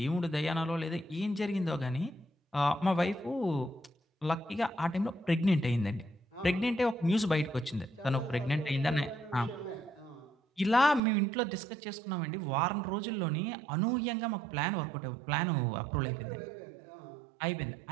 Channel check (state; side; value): drops out; left; at 11.0 s